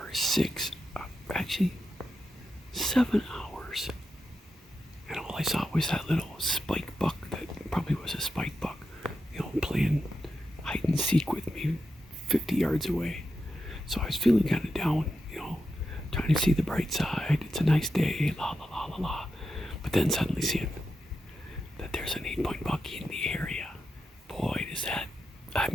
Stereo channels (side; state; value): both; normal; correlation 0.87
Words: 7 hours. And all I saw was that little spike buck that probably was a spike buck, playing hide and seek with me 50 yards away. So I was feeling kind of down, trying to see the bright side. It's a nice day, la la la la la. But then suddenly seeing that there's an 8-point buck in the area. Boy,